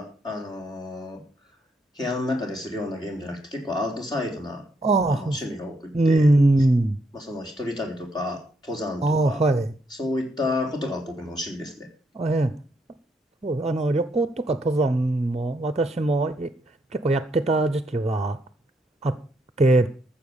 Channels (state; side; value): normal; both; correlation 0.76